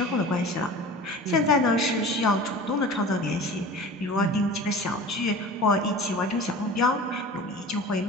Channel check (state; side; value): normal; both; correlation 0.38